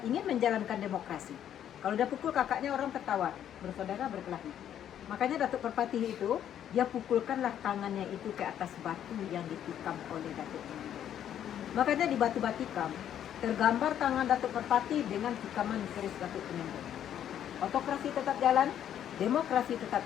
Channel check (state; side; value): quieter; right; 10.2 dB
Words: ingin menjalankan demokrasi. Kalau dia pukul kakaknya orang tertawa, bersaudara berkelahi. Makanya Datuk Perpati itu, dia pukulkanlah tangannya itu ke atas batu yang ditikam oleh Datuk Temenggung. Makanya di batu batikam, tergambar tangan Datuk Perpati dengan tikaman keris Datuk Temenggung. Otokrasi tetap jalan, demokrasi tetap